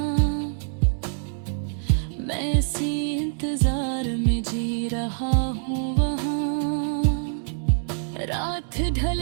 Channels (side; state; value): left; silent; digital silence